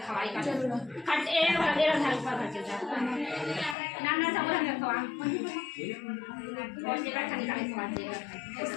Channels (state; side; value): drops out; right; at 3.8 s